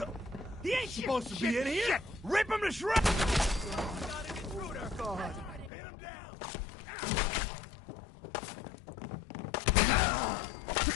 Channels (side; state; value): right; drops out; at 5.7 s